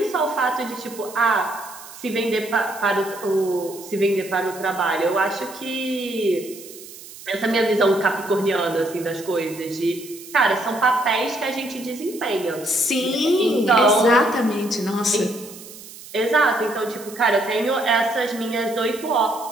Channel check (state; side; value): noise; right; hiss, 16 dB below the sound